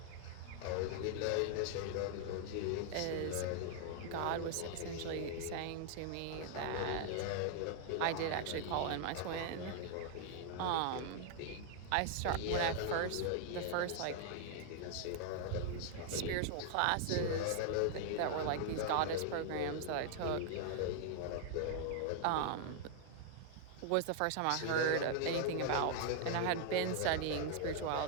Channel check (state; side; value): different; both; correlation 0.00